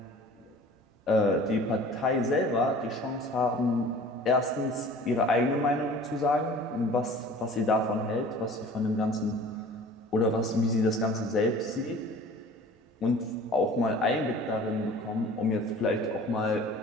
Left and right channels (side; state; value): both; normal; correlation 0.45